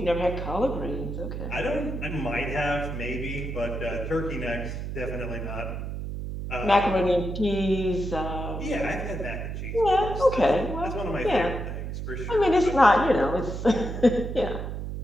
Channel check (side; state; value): right; noise; hum, 5 dB below the sound